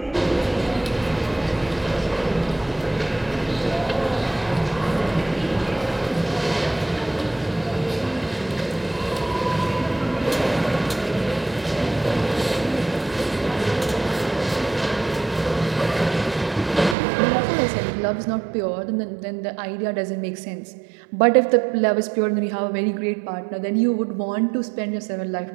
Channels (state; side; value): drops out; left; at 16.9 s